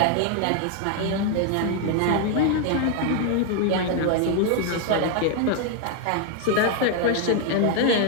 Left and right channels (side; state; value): both; different; correlation 0.01